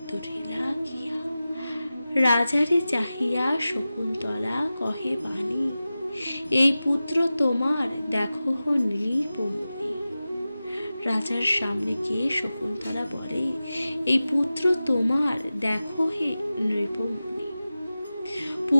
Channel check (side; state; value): both; inverted; correlation -0.95